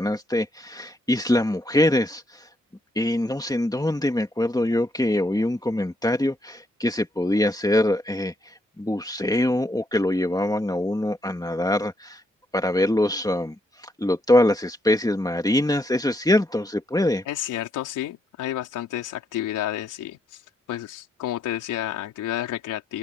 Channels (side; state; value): both; normal; correlation 0.75